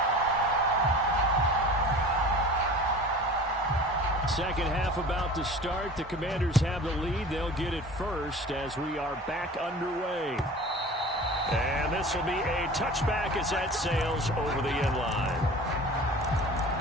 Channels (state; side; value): normal; both; correlation 0.40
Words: Second half about to start. The Commanders have the lead. They'll get it first as we are back underway. And this will be a touchback as that sails over the end line.